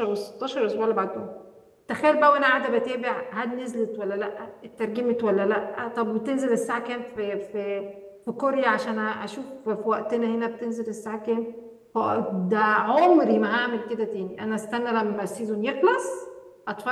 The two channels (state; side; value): identical; both; correlation 1.00